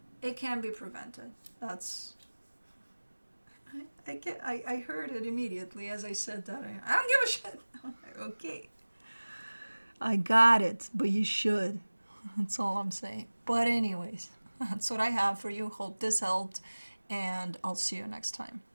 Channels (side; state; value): both; inverted; correlation -1.00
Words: It can be prevented. That's... I heard it immediately as I said that. I don't give a shit. I'm like, okay. I got it, but you should. That's all I'm saying. But anyways, that's what I have for you. Hope this helped, and I'll see you next time.